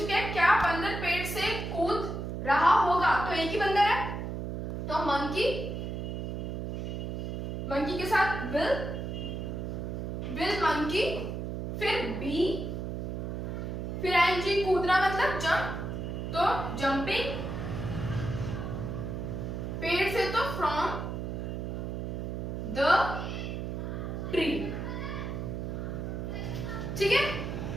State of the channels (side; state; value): right; noise; hum, 4 dB below the sound